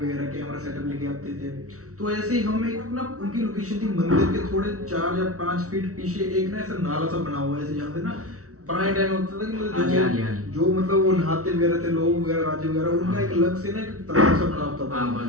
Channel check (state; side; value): late; left; 0.65 ms